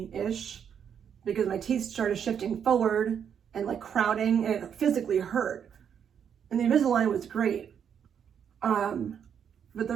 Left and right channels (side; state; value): left; quieter; 8.0 dB